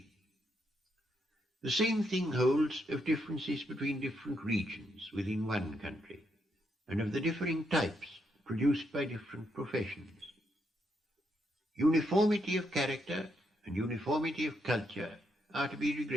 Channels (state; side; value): normal; both; correlation 0.78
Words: The same thing holds of differences between different regions within one country, and of the differing types produced by different professions. Uniformity of character and uniformity of culture are to be